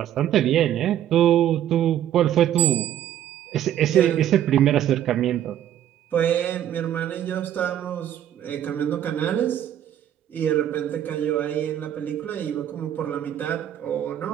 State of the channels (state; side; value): quieter; left; 11.1 dB